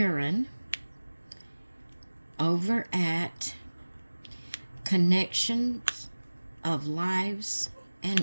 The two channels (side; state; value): both; inverted; correlation -1.00